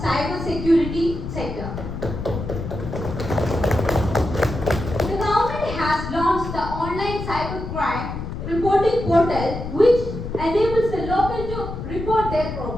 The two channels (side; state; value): left; noise; rumble, 7 dB below the sound